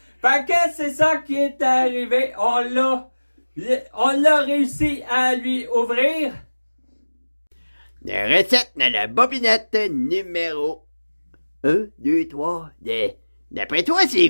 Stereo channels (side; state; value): both; inverted; correlation -1.00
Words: Fait que c'est ça qui est arrivé. On l'a réussi à lui ouvrir. La recette de la bobinette numéro 1, 2, 3. D'après toi, c'est